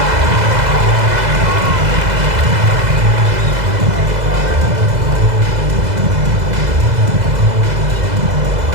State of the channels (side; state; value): left; late; 2.0 ms